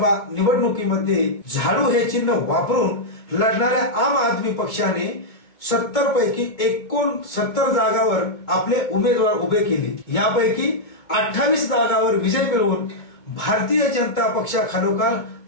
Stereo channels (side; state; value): right; late; 2.2 ms